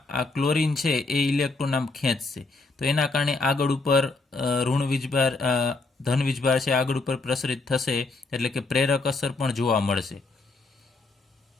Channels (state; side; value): quieter; right; 3.6 dB